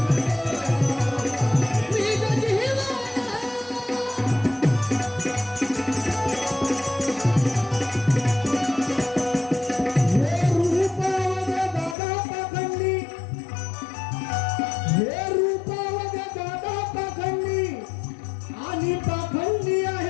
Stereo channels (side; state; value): right; drops out; at 12.0 s